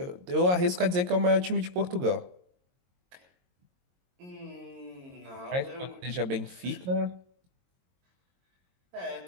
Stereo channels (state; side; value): late; left; 22 ms